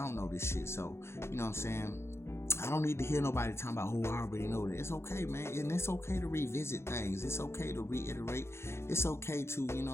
know this shit. So, you know what I'm saying? I don't need to hear nobody talking about, oh, I already know that. It's okay, man. And it's okay to revisit things. It's okay to reiterate. It's okay to, you know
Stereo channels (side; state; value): right; late; 0.12 ms